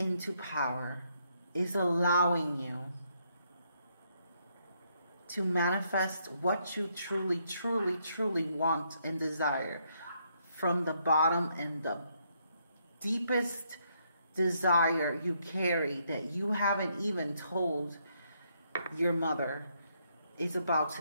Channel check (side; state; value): both; inverted; correlation -0.74